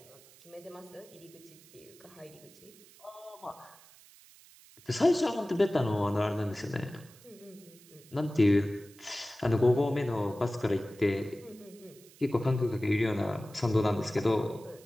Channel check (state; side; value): noise; right; hiss, 24 dB below the sound